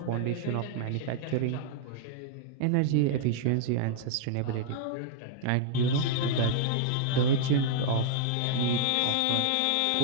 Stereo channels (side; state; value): both; different; correlation -0.01